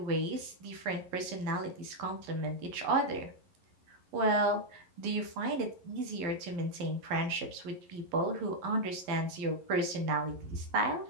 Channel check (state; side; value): late; left; 11 ms